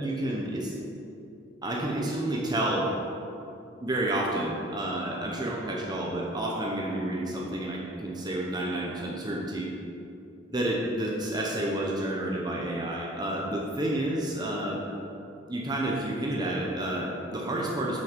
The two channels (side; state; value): both; normal; correlation 0.49